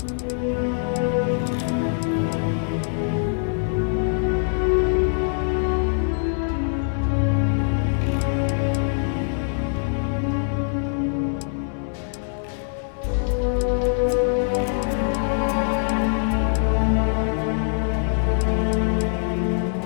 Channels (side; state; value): right; silent; digital silence